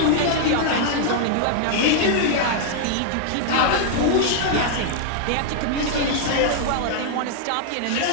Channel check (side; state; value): both; different; correlation -0.01